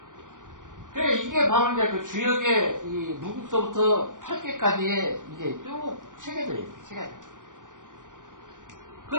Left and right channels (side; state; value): left; late; 0.88 ms